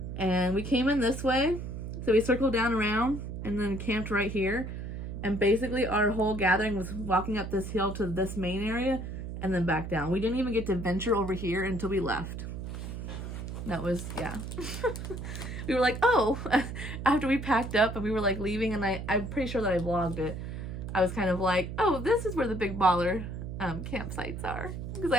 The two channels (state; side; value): noise; right; hum, 7 dB below the sound